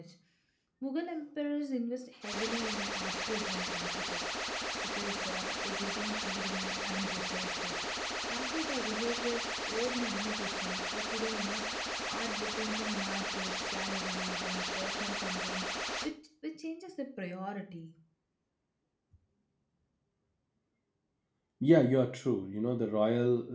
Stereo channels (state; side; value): identical; both; correlation 1.00